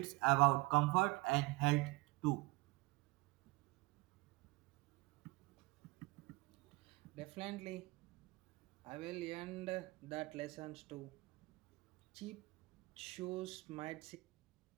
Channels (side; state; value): left; quieter; 23.5 dB